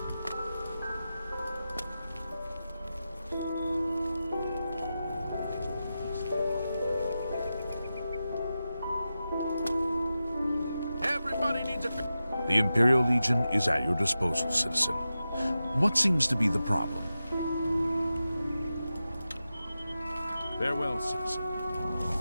The Imperial Legion is at your disposal, citizen. What seems to be the problem? Farewell, citizen.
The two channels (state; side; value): inverted; both; correlation -0.92